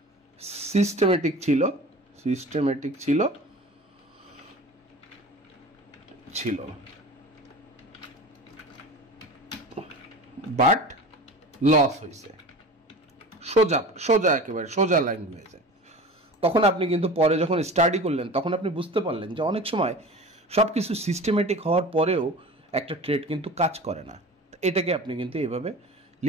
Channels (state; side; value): normal; both; correlation 0.36